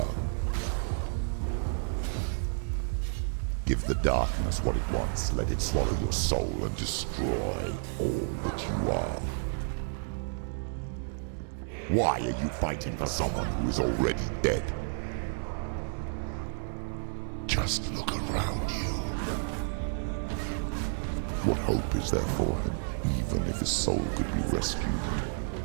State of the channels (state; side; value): silent; left; digital silence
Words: Give the darkness what it wants, let it swallow your soul and destroy all that you are. Why are you fighting for someone who is already dead? Just look around you. What hope is there for him, even if his soul could be rescued?